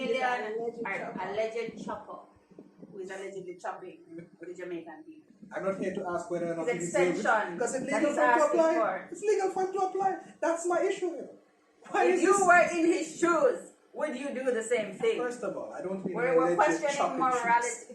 with an alleged chopper. alleged chopper who is allegedly chopping the Jamaican people. I'm not here to ask whether or not His he deserves it. extension Because it's that legal he's for him to asking apply. for. It's legal for him to apply. That's my issue here. Why If is you this? were in his shoes, would you do the same thing? First of all, I don't mean We're alleged questioning chopping morality.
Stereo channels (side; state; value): both; identical; correlation 1.00